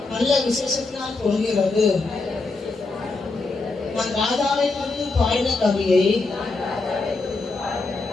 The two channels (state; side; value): quieter; right; 3.6 dB